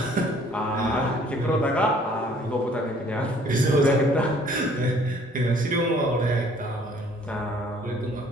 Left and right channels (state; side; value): normal; both; correlation 0.58